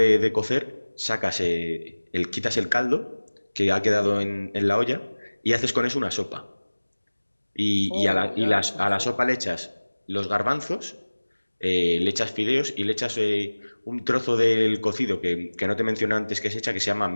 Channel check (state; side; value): inverted; both; correlation -1.00